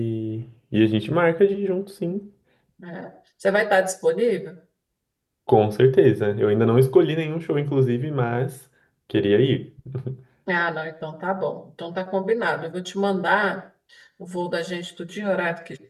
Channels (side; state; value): both; identical; correlation 1.00